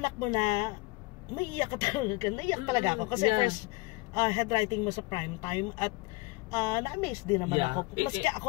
mo na, maiiyak ka talaga. Naiyak talaga ako. Kasi first headwriting mo sa prime time at na-amaze din naman ako. Maski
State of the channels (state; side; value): quieter; right; 24.4 dB